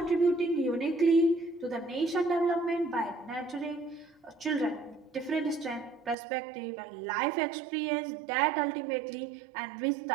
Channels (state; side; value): drops out; left; at 6.2 s